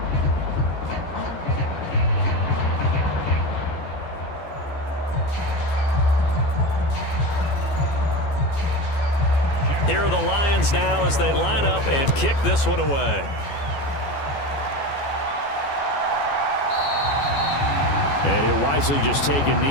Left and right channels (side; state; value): right; late; 14 ms